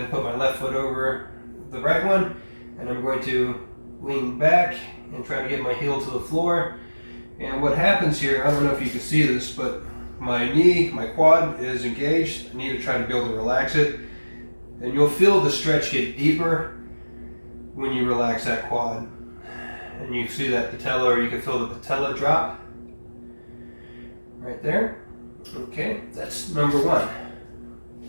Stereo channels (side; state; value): both; inverted; correlation -1.00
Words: and put my left foot over the right one, and I'm going to lean back and try to get my heel to the floor. And what happens here, I don't know if you can see this, but my knee, my quad is engaged. I need to try to be able to relax it. And you'll feel the stretch get deeper when you relax that quad. And you see that patella, or you can feel the patella drop right there. Okay, that's number 1.